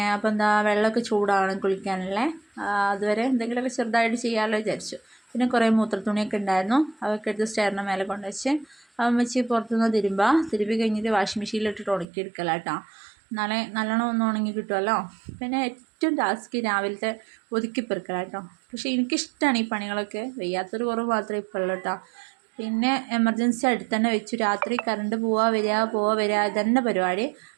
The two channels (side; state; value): left; drops out; at 12.1 s